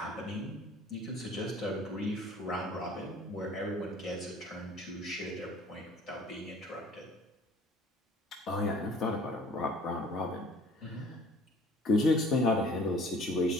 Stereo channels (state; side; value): normal; both; correlation 0.51